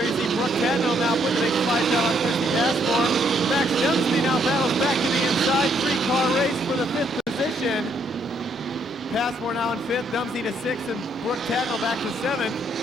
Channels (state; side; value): normal; both; correlation 0.71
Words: you see Brooke Cadwell now putting the big slide down on Christy Passmore. Max Dempsey now battles back to the inside. 3-car race for the 5th position. Passmore now in 5th, Dempsey to 6th, and Brooke Cadwell back to 7th.